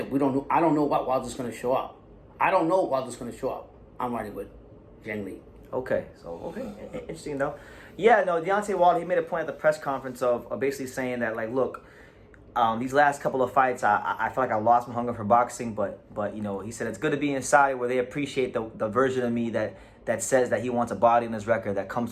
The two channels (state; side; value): identical; both; correlation 1.00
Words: I don't know what Wilder's gonna show up. I'm riding with Yang Lee. Okay, interesting though. Yeah, no, Deontay Wilder, he made a point at the press conference of basically saying that, like, look, these last couple of fights, I feel like I lost my hunger for boxing, but you know, he said it's good to be in Saudi where they appreciate the version of me that says that he wants a body in his record that comes